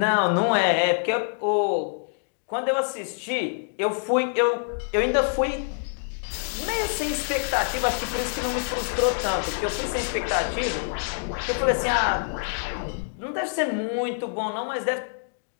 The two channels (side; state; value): right; silent; digital silence